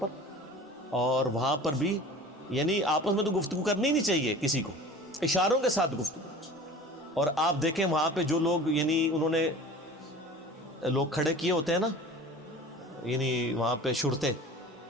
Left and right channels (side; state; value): both; normal; correlation 0.41